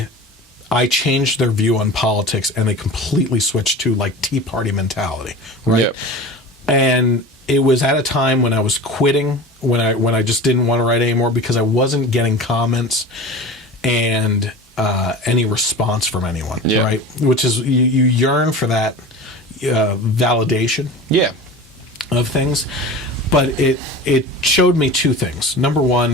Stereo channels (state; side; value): normal; both; correlation 0.34